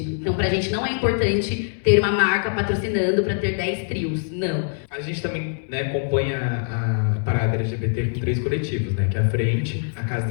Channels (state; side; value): silent; right; digital silence